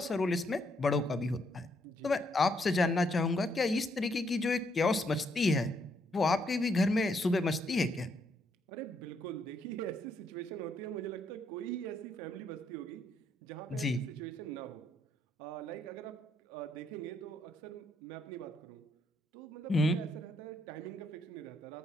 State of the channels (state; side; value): normal; both; correlation 0.74